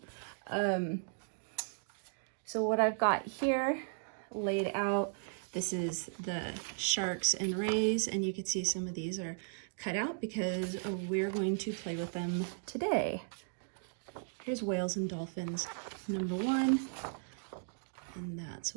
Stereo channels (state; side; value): silent; left; digital silence